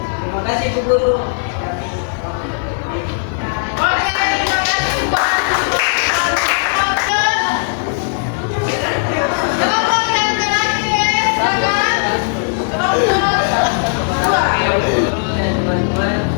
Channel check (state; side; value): silent; right; digital silence